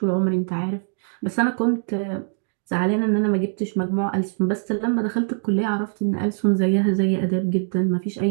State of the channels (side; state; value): left; silent; digital silence